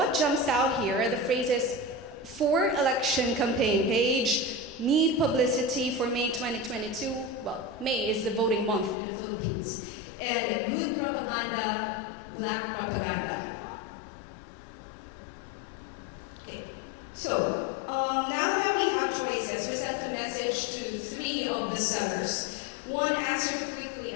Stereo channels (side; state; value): right; drops out; at 9.0 s